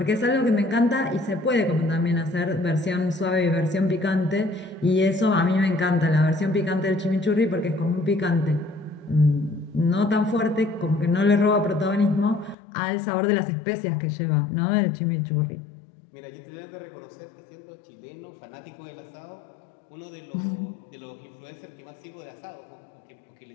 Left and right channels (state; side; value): drops out; right; at 12.6 s